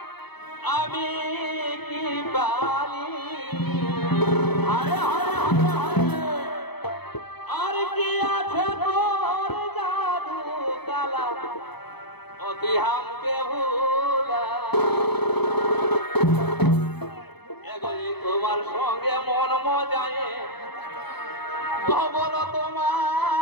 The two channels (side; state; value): right; late; 0.98 ms